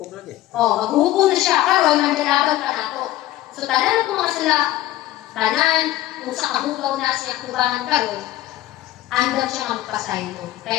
lagi. Maghuhukom na siya, karon mandalaban ka na to. So, tanan ko mga sila, tanan, kung sa kahugaw na siya kubangan karon, andam siya ang pasayo.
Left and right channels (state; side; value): quieter; right; 15.0 dB